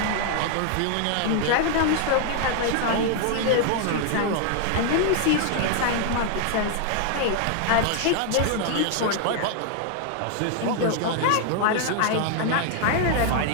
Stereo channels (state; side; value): different; both; correlation 0.00